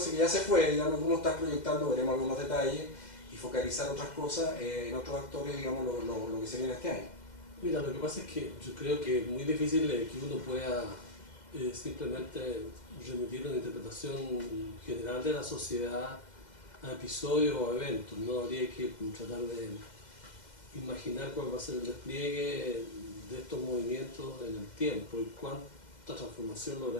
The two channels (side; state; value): right; late; 2.0 ms